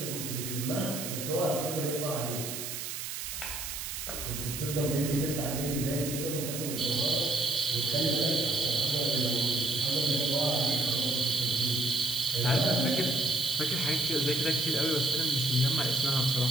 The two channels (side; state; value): right; noise; hiss, 6 dB below the sound